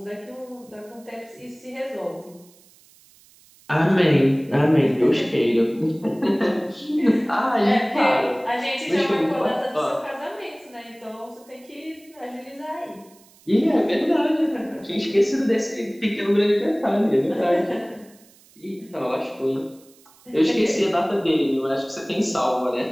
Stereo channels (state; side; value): noise; right; hiss, 28 dB below the sound